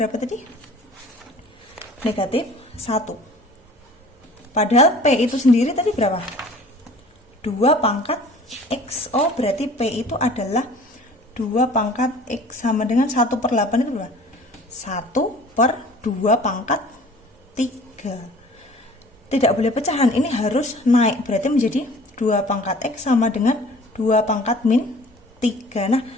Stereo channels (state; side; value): normal; both; correlation 0.48